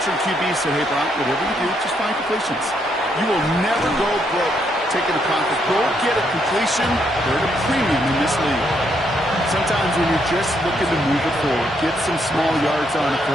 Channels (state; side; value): normal; both; correlation 0.75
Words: QBs said, hey, Brock, whatever you do, just find completions. You will never go broke taking a profit. Go get a completion. They're at a premium in this league. Sometimes when you're just looking to move it forward, get some small yards on a